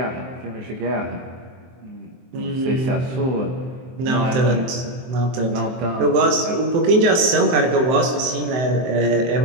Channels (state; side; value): late; left; 23 ms